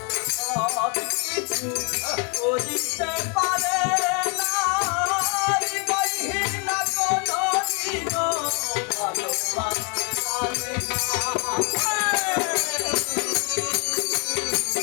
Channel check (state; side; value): quieter; right; 34.3 dB